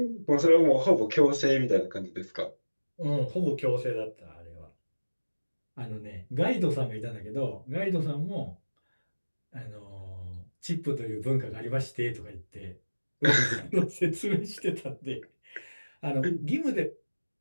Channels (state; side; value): inverted; both; correlation -1.00